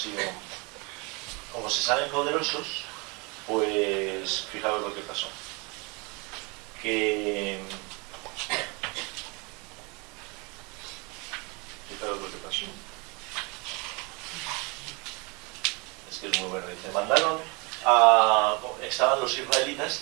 como se saben poderosos, pues fijaos lo que pasó. Fijaos lo que pasó. Es que es muy bueno. Dice, estaban los israelitas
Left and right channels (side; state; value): left; quieter; 29.3 dB